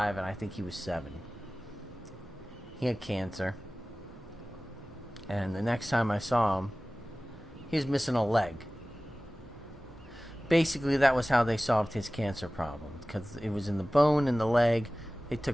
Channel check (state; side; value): normal; both; correlation 0.97